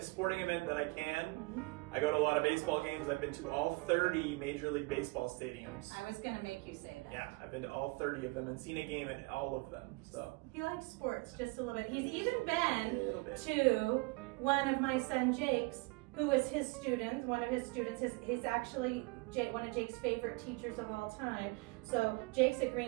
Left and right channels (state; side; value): quieter; left; 26.6 dB